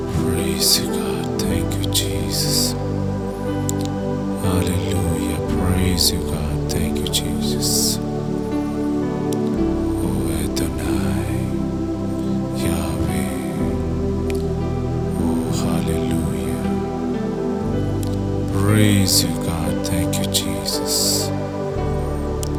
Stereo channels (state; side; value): identical; both; correlation 1.00